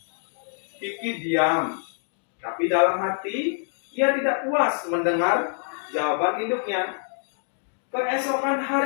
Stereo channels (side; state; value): right; silent; 57 dB below the other